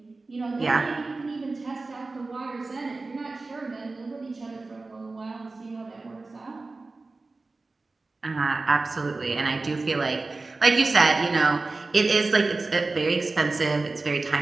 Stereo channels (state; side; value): quieter; left; 3.5 dB